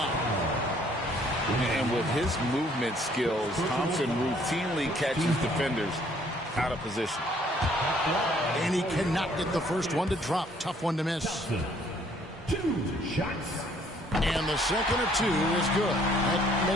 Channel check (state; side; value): normal; both; correlation 0.62